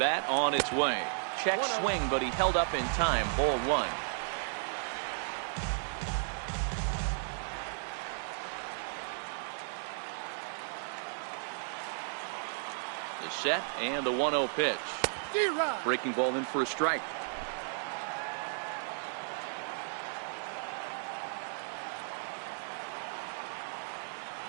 on its way. Check swing, but he held up in time. Ball 1. The set and the 1-0 pitch. Breaking ball in for a strike.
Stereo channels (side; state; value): left; silent; digital silence